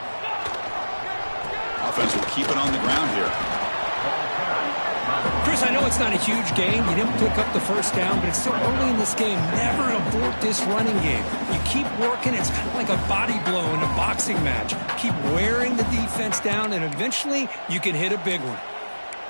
Offense will keep it on the ground here. Chris, I know it's not a huge gain. You didn't pick up the first down, but it's still early in this game. Never abort this running game. You keep working. It's kind of like a body blow in a boxing match. Keep wearing the defense down, and eventually you can hit a big one.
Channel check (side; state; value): both; inverted; correlation -1.00